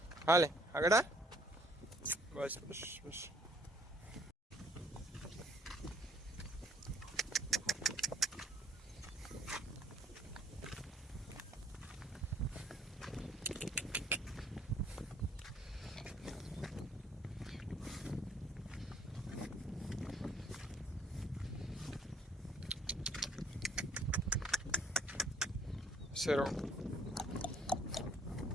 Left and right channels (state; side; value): normal; both; correlation 0.63